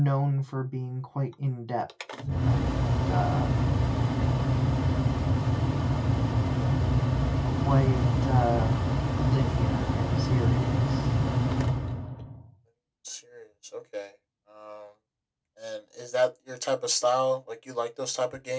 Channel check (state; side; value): identical; both; correlation 1.00